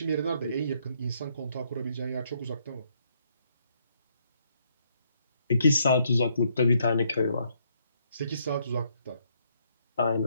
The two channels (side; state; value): both; inverted; correlation -0.73